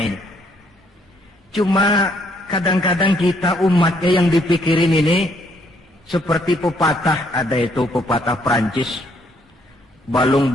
ini. Cuma kadang-kadang kita umatnya yang dipikirin ini seperti pepatah, ada itu pepatah Prancis,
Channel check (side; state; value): both; normal; correlation 0.69